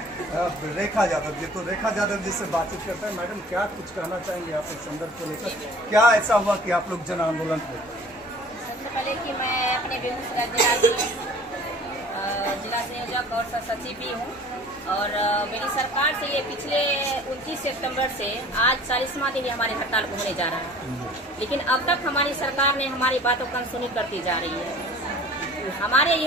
रेखा यादव जी। तो रेखा यादव जी से बातचीत करते हैं। मैडम, क्या कुछ कहना चाहेंगे आप इस संदर्भ को लेकर? क्या ऐसा हुआ कि आप लोग जन आंदोलन हुए? सबसे पहले कि मैं अपने बेगूसराय जिला संयोजक और सचिव भी हूँ। और मेरी सरकार से ये पिछले 29 सितंबर से आज 40वां दिन हमारे हड़ताल को होने जा रहा है, लेकिन अब तक हमारी सरकार ने हमारी बातों को अनसुनी करती जा रही है। हमारे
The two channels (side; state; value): both; normal; correlation 0.47